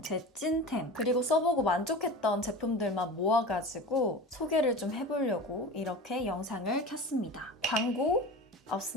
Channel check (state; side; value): normal; both; correlation 0.32